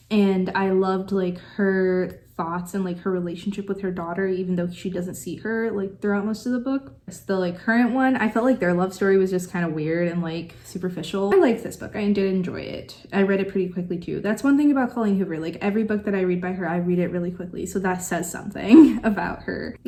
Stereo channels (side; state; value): both; identical; correlation 1.00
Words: And I loved like her thoughts and like her relationship with her daughter, even though she doesn't see her like throughout most of the book. The like current one, I felt like their love story was just kind of weird and like superficial. I liked this book. I did enjoy it. I read it pretty quickly too. That's one thing about Colleen Hoover. Like every book that I read by her, I read it really quickly. So that says something about her. I